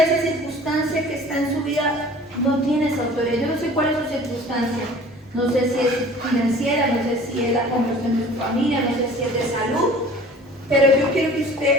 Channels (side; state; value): both; normal; correlation 0.46